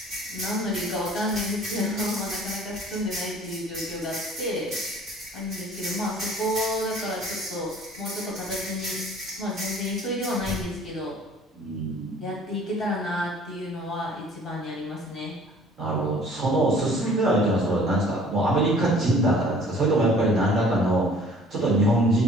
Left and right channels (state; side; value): normal; both; correlation 0.52